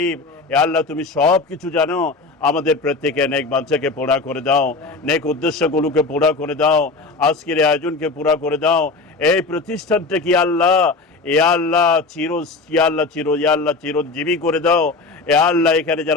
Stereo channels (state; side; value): quieter; right; 3.7 dB